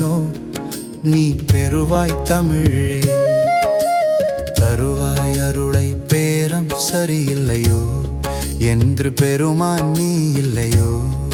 நீ பெறுவாய் தமிழே. தருவாய் அருளை பேரம் சரியில்லையோ என்று பெருமான் நீ இல்லையோ.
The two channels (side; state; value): both; identical; correlation 1.00